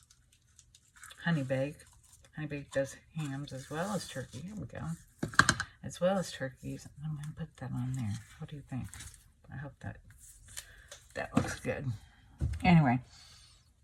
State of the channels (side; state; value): both; identical; correlation 1.00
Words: Honey Bake, Honey Baked does hams as well as turkey. Here we go. As well as turkeys. I'm going to put that on there. What do you think? I hope that looks good. Anyway,